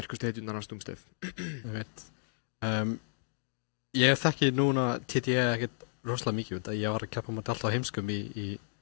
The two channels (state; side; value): silent; right; digital silence